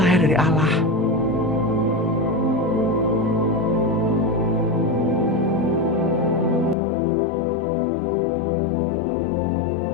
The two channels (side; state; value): right; drops out; at 6.8 s